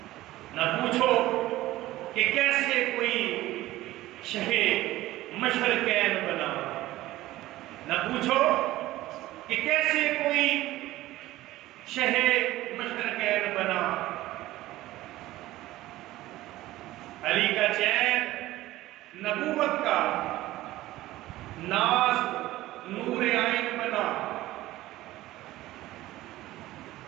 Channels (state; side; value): quieter; left; 16.4 dB